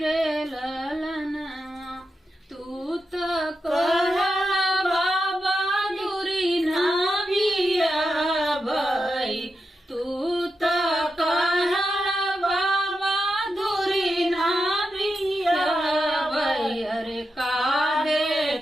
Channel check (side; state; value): both; normal; correlation 0.88